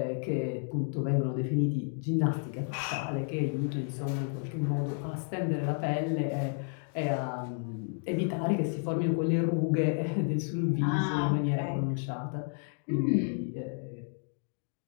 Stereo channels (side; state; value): right; silent; 57 dB below the other